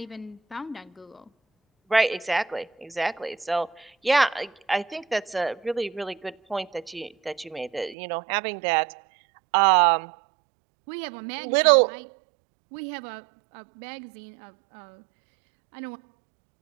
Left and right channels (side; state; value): left; drops out; at 8.0 s